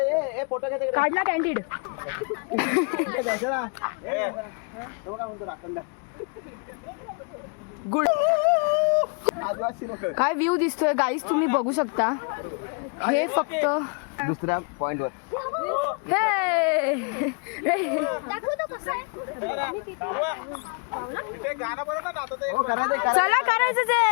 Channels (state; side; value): quieter; right; 38.3 dB